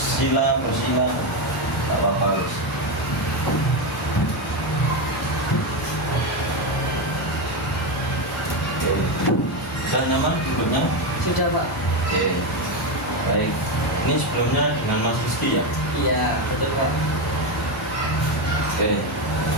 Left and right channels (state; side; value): normal; both; correlation 0.11